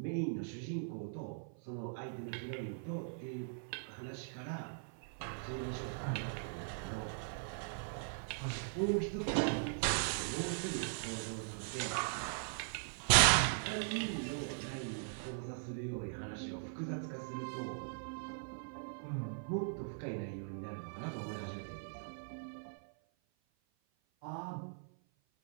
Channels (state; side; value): silent; left; 51 dB below the other